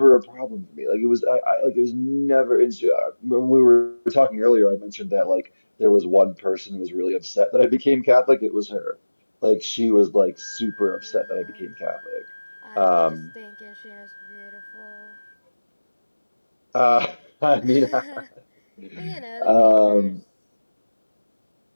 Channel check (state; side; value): inverted; both; correlation -1.00